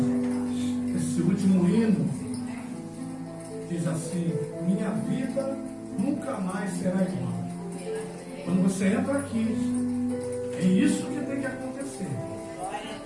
Esse último hino diz assim: minha vida nunca mais será igual. Quando você entra aqui, é isso que tem que acontecer.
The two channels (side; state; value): both; identical; correlation 1.00